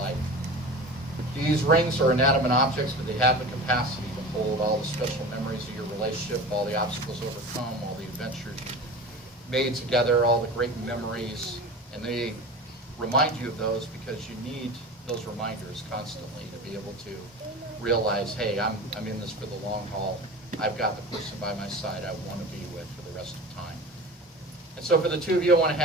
These rings are inanimate objects, but they have the capacity to hold all the special memories of your relationship, all the obstacles overcome, all the adventures you made together, all the great memories, and they remind you of those because you need those reminders constantly to be able to realize, hey, I'm in this for the long haul. I've got the person by my side I want to be with for the rest of time. And so for the two of you, I want to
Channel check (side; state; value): both; normal; correlation 0.33